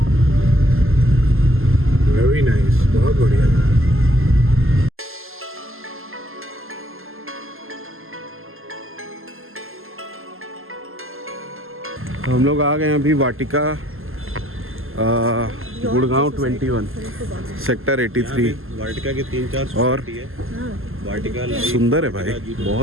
वेरी नाइस, बहुत बढ़िया। तो हम लोग आ गए हैं अभी वाटिका गुड़गांव 21 सेक्टर 83। वाटिका के 3-4 और सोसाइटी है। वाटिका सुंदर है भाई,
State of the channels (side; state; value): left; late; 0.61 ms